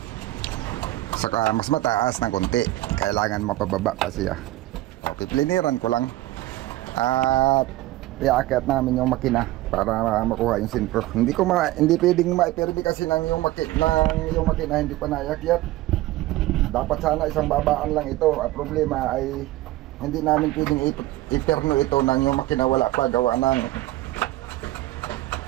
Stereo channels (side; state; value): left; quieter; 16.8 dB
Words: Saka mas mataas ng konti, kailangan mapababa kasi pipiliran ko lang. At iakyat namin yung makina para makuha yung sintro. Hindi pwedeng maiperbi kasi yung makina hindi pa naiakyat. Dapat sana isang babaan lang ito. Ang problema ay hindi namin pwedeng iperno ito nang yung makina wala pa gawa ng